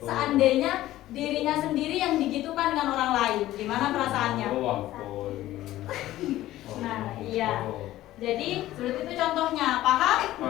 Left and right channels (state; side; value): quieter; right; 15.0 dB